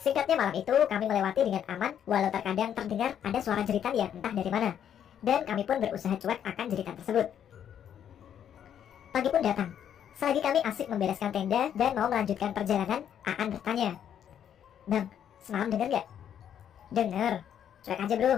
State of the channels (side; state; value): right; quieter; 9.3 dB